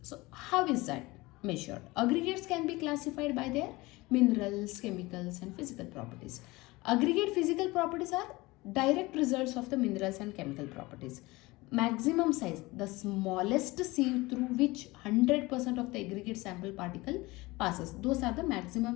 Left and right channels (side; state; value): right; quieter; 21.6 dB